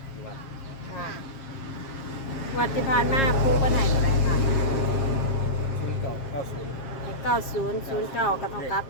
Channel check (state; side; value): late; right; 7.5 ms